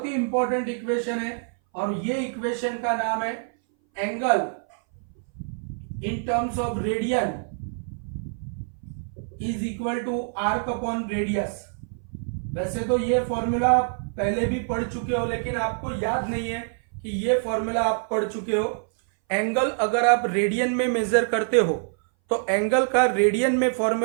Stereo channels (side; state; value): left; silent; 60 dB below the other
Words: ही इंपॉर्टेंट इक्वेशन है, और ये इक्वेशन का नाम है angle in terms of radian is equal to arc upon radius. वैसे तो ये फॉर्मूला आप पहले भी पढ़ चुके हो, लेकिन आपको याद नहीं है कि ये फॉर्मूला आप पढ़ चुके हो। एंगल अगर आप रेडियन में मेजर करते हो तो एंगल का रेडियन में